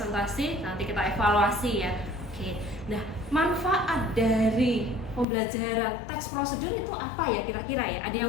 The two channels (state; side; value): drops out; right; at 5.2 s